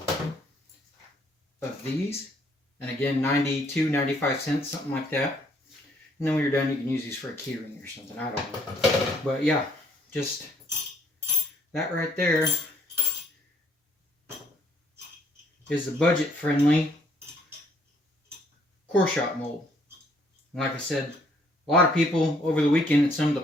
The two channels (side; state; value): both; normal; correlation 0.66